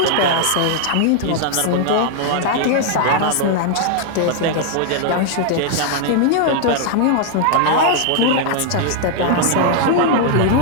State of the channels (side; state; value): both; different; correlation 0.00